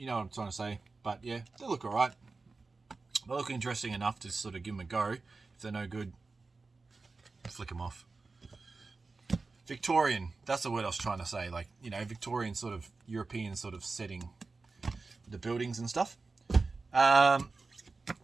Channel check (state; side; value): quieter; left; 3.9 dB